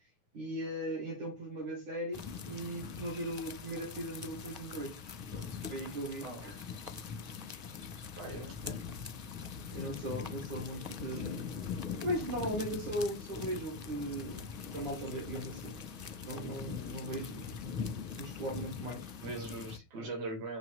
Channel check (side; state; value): left; late; 9.4 ms